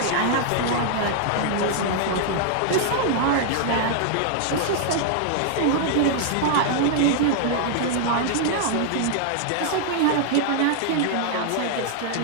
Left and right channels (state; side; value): different; both; correlation -0.01